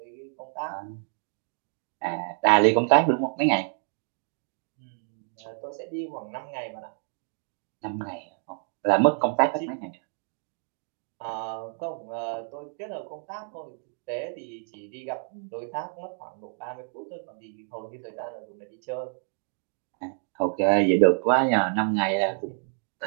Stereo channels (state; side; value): silent; left; digital silence